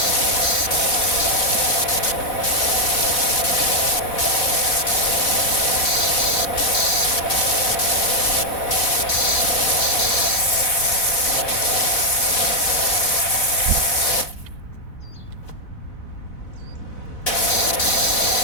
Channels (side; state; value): right; late; 4.0 ms